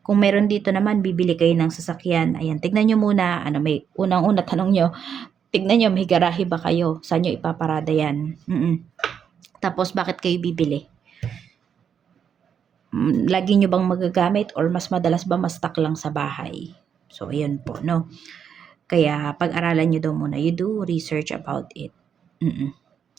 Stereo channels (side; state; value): left; quieter; 7.8 dB